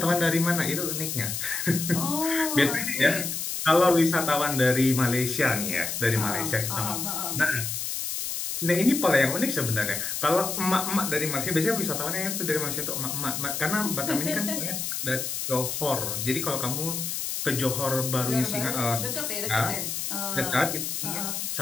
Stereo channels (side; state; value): left; noise; hiss, 3 dB below the sound